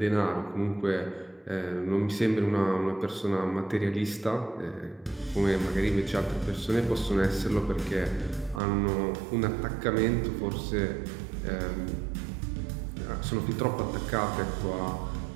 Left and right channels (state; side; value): drops out; left; at 8.6 s